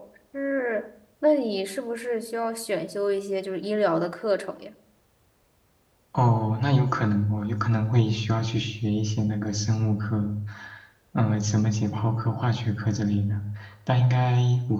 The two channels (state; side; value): identical; both; correlation 1.00